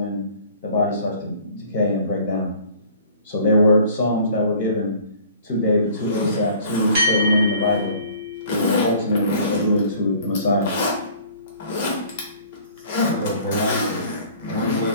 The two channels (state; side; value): inverted; both; correlation -0.51